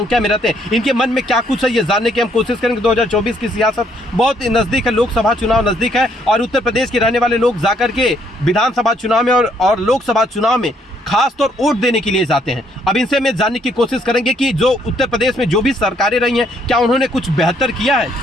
में रहते हैं। इनके मन में क्या कुछ है ये जानने की हम कोशिश करेंगे। 2024 की सियासत बहुत नजदीक है, लोकसभा चुनाव नजदीक है और उत्तर प्रदेश के रहने वाले लोग जाकर के विधानसभा चुनाव में और लोकसभा चुनाव में खासतौर वोट देने के लिए जाते हैं। अब इनसे मैं जानने की कोशिश करेंगे कि जो उत्तर प्रदेश में जो भी सरकारें रही हैं, क्या उन्होंने कुछ बेहतर किया है?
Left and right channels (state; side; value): normal; both; correlation 0.68